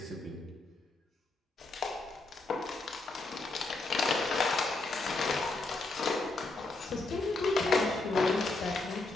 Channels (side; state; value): right; quieter; 3.3 dB